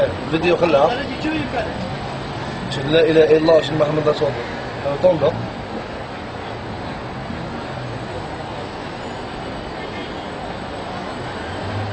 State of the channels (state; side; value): identical; both; correlation 1.00